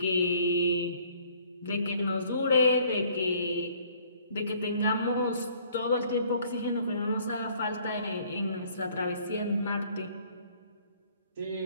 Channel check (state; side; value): inverted; both; correlation -0.59